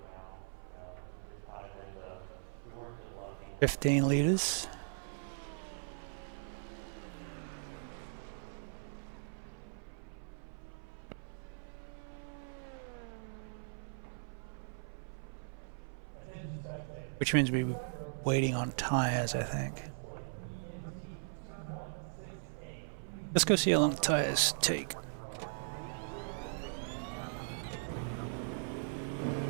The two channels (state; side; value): silent; left; 52 dB below the other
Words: 15 liters. Which means we're waiting on tires, I think. Let's go see how long the tires take.